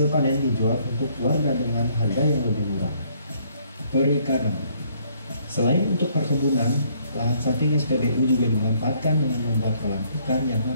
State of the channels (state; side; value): inverted; both; correlation -0.66